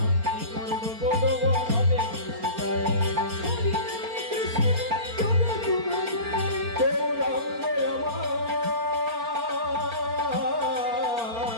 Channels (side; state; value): left; late; 4.3 ms